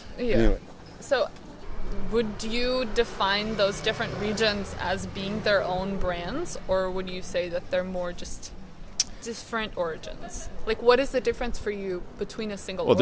Yeah. Anyway. So, would you define those different regions as being their own brands, or would you say that they're more just different origins? What is the difference for you between a single origin? Well,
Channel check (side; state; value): both; identical; correlation 1.00